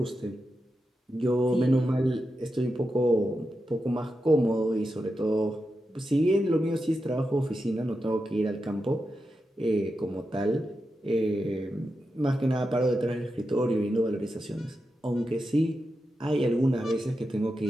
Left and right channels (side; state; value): both; normal; correlation 0.89